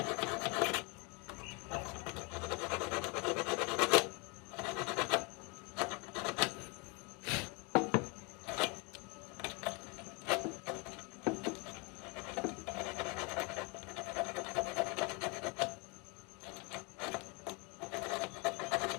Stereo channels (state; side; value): quieter; right; 30.6 dB